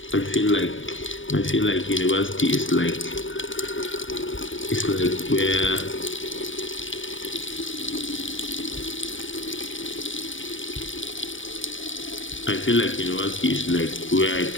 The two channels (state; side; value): late; right; 0.57 ms